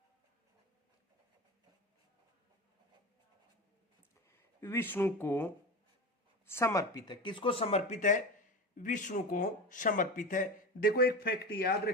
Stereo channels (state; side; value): normal; both; correlation 0.25